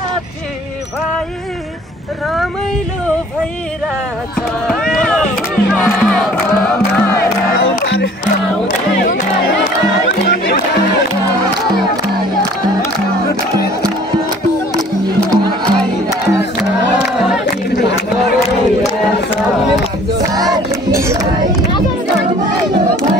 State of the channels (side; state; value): both; normal; correlation 0.52